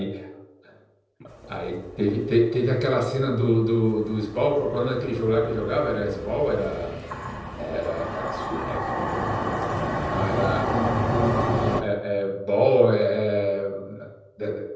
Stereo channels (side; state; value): both; identical; correlation 1.00